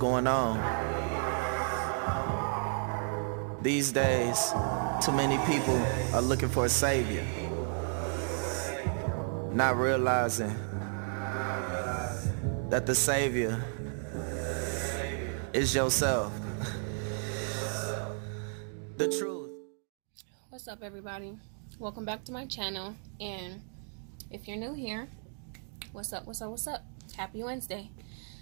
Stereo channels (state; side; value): silent; left; 56 dB below the other